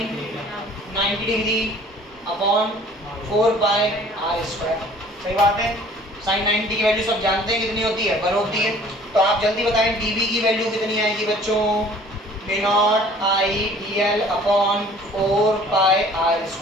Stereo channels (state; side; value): normal; both; correlation 0.52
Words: 90 degree upon 4 pi r square. सही बात है। साइन 90 की वैल्यू सब जानते हैं कितनी होती है? 1 होती है। तो आप जल्दी बताएं dv की वैल्यू कितनी आएगी बच्चों? Mu naught I dl upon 4 pi r